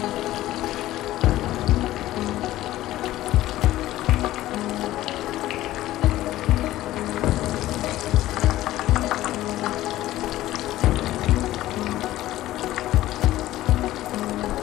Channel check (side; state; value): right; quieter; 15.2 dB